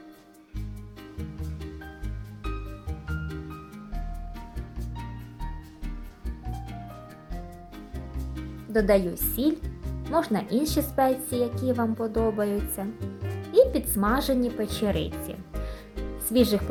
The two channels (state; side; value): identical; both; correlation 1.00